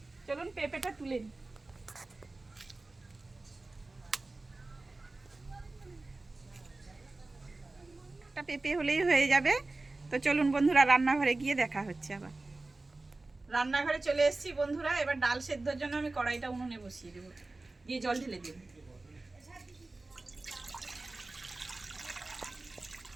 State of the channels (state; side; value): quieter; left; 3.2 dB